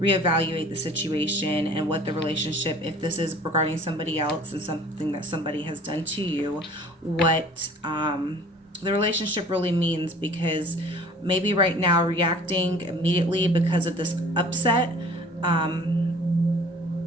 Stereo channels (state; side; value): normal; both; correlation 0.48